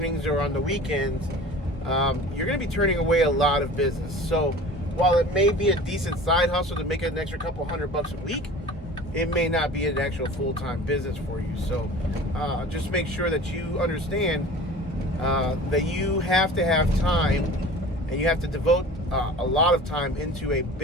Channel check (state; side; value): normal; both; correlation 0.41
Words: or on the weekends, you're going to be turning away a lot of business. So while it may be a decent side hustle to make an extra couple $100 a week, it may not be an actual full-time business for you. So just make sure that you understand that you have to have time, and you have to devote a lot of time into a